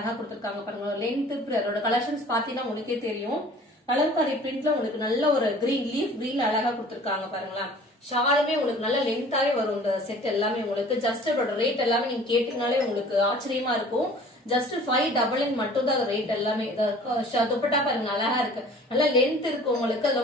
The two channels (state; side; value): normal; both; correlation 0.48